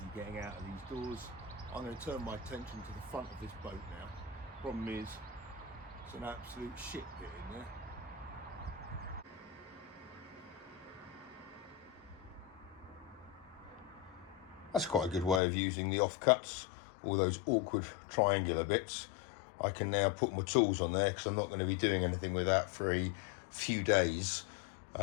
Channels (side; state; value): right; drops out; at 15.4 s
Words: getting out of these doors. I'm going to turn my attention to the front of this boat now. Problem is, it's an absolute shit pit in there. That's quite a good way of using the offcuts, all those awkward triangular bits. I can now put my tools on there because I'm not going to be doing anything with that for a few days,